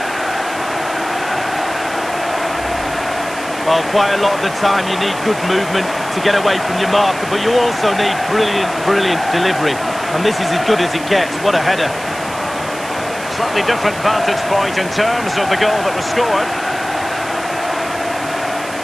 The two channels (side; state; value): right; noise; hiss, 15 dB below the sound